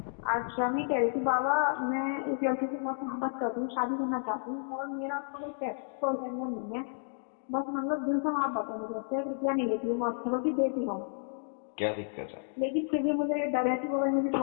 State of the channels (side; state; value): right; silent; digital silence